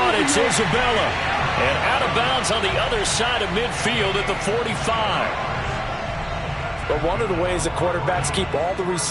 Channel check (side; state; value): both; identical; correlation 1.00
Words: It's Isabella. And out of bounds on the other side of midfield at the 45. But one of the ways that quarterbacks keep all the